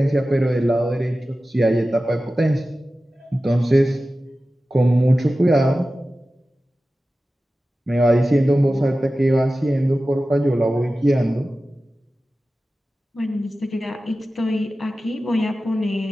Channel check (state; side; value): normal; both; correlation 0.95